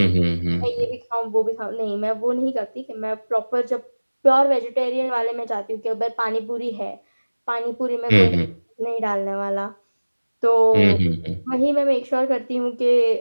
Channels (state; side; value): inverted; both; correlation -1.00